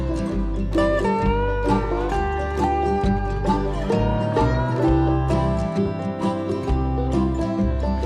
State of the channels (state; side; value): identical; both; correlation 1.00